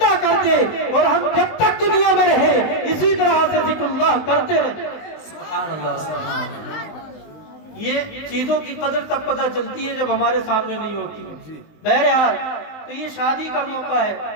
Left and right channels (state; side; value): late; right; 19 ms